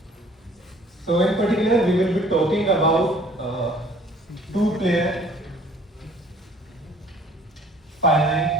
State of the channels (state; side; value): normal; both; correlation 0.55